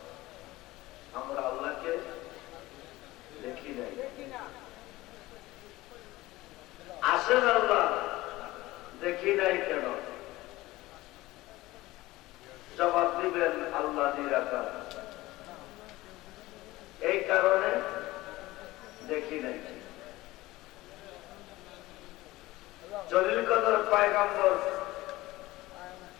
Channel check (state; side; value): quieter; right; 18.5 dB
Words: আমরা আল্লাহকে দেখি নাই। আছেন আল্লাহ, দেখি নাই কেন? জবাব দিবেন আল্লাহ নিরাকার, এই কারণে দেখি নাই। জলিল কদর পয়গম্বর